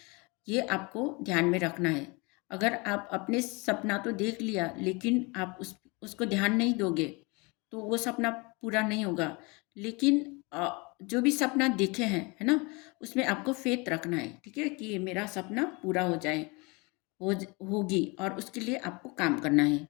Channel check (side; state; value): right; quieter; 27.9 dB